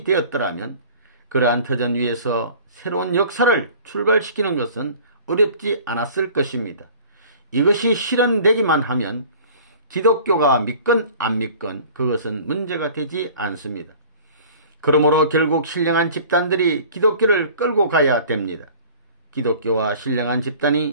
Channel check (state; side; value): inverted; both; correlation -0.46